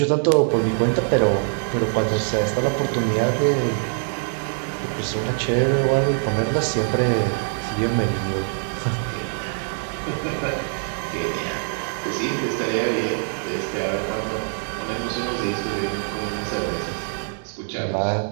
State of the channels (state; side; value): silent; left; 63 dB below the other